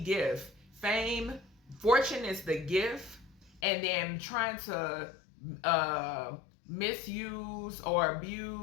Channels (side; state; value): right; drops out; at 3.6 s